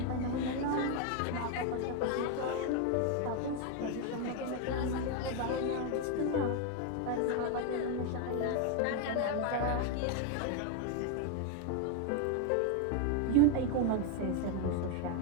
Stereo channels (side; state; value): both; different; correlation 0.01